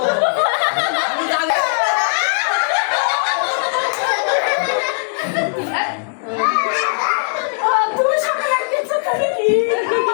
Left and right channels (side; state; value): right; silent; digital silence